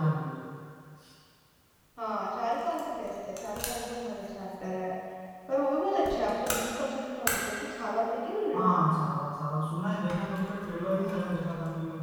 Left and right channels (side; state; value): both; identical; correlation 1.00